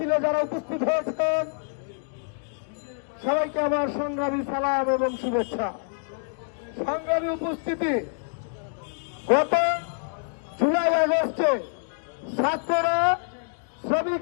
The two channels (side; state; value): right; silent; digital silence